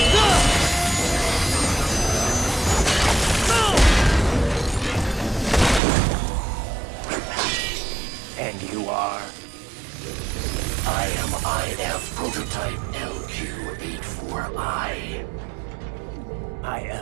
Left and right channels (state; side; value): drops out; left; at 5.8 s